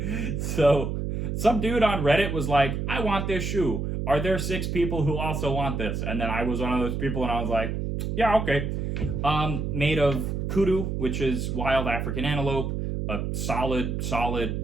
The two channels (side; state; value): right; noise; hum, 2 dB below the sound